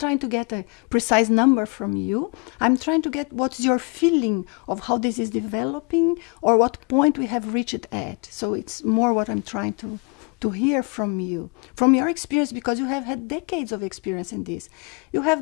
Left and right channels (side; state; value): right; quieter; 31.9 dB